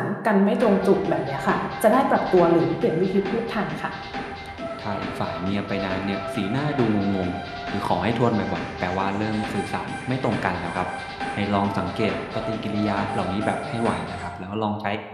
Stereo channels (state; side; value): identical; both; correlation 1.00